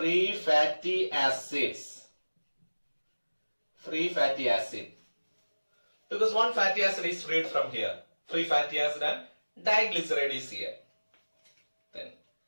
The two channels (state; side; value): inverted; both; correlation -1.00